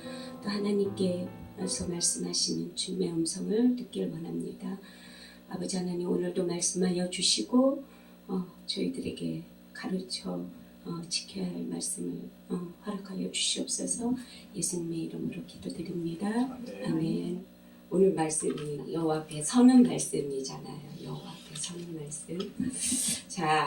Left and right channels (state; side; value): identical; both; correlation 1.00